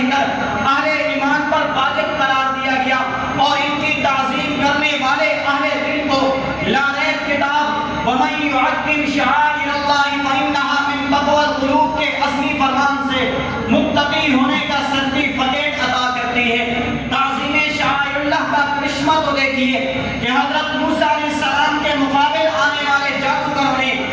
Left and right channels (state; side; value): identical; both; correlation 1.00